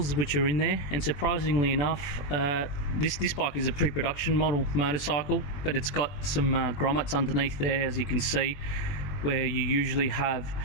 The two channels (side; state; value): right; late; 21 ms